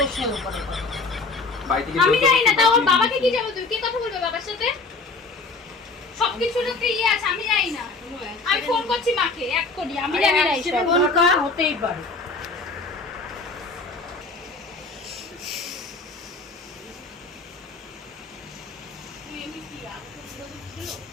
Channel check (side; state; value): right; quieter; 3.9 dB